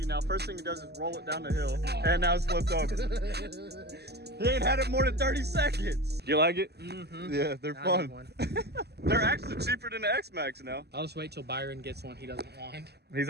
now. First thing he does is roll it down the hill, and now it's flipped over. He ain't had it more than 30 seconds. You like it? Mm-hmm. Yeah, they're I fun. need one. They're actually cheaper than the Xmaxx now. I'll just wait till Byron gets one he doesn't want. It's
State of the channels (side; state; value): left; late; 0.48 ms